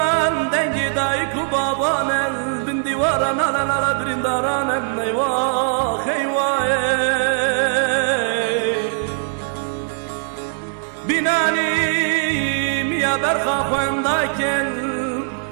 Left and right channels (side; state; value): left; silent; 59 dB below the other